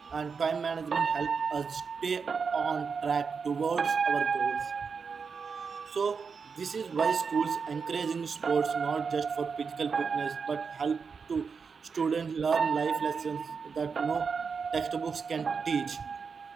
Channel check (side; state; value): left; quieter; 5.5 dB